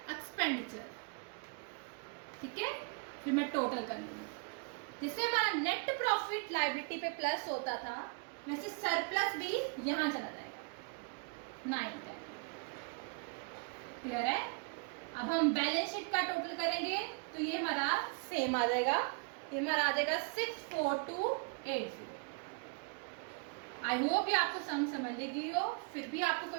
expenditure. ठीक है फिर मैं टोटल कर लूंगी, जिससे हमारा नेट प्रॉफिट लायबिलिटी पे प्लस होता था वैसे सरप्लस भी यहां चला जाएगा 910। क्लियर है। अब हम बैलेंस शीट का टोटल करेंगे तो ये हमारा सेम आ जाएगा, ये हमारा आ जाएगा 64280। आई होप ये आपको समझ लगी हो, फिर भी आपको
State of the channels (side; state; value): left; quieter; 34.8 dB